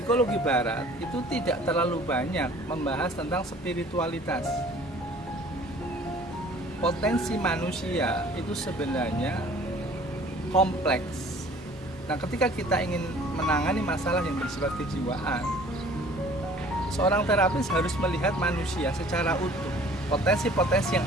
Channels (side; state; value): both; normal; correlation 0.51